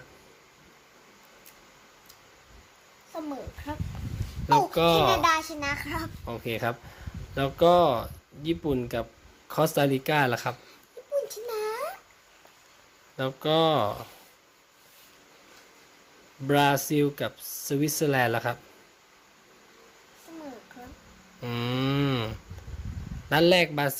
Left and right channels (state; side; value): identical; both; correlation 1.00